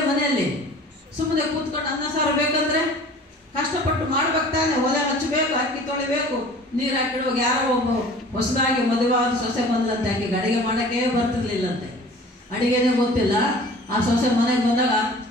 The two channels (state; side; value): normal; both; correlation 0.45